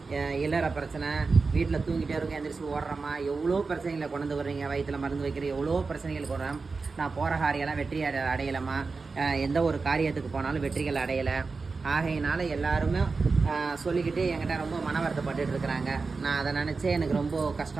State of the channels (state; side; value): quieter; left; 4.3 dB